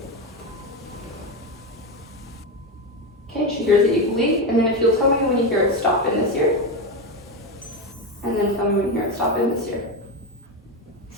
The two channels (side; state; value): both; normal; correlation 0.14